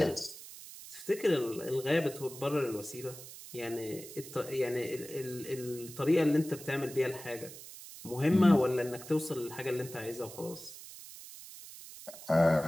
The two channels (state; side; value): noise; right; hiss, 14 dB below the sound